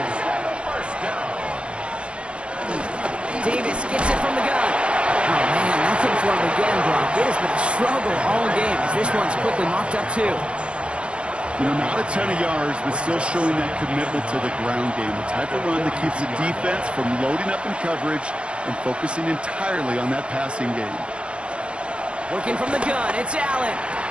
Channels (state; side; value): late; left; 0.058 ms